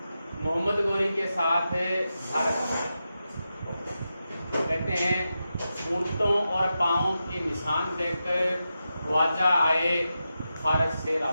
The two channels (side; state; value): both; inverted; correlation -0.90